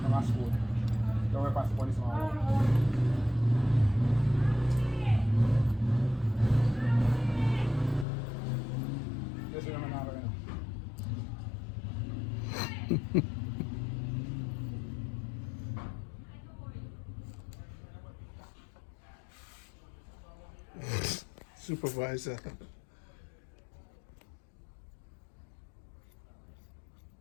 Come on, school. Don't worry past the police, man. Yes, we're now, right now. Supervisor.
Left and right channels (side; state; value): right; drops out; at 8.1 s